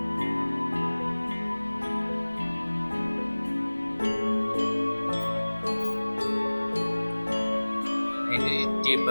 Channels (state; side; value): inverted; both; correlation -1.00